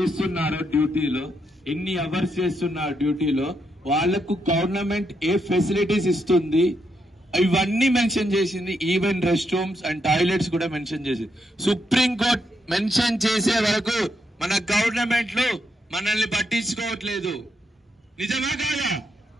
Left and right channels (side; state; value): both; normal; correlation 0.79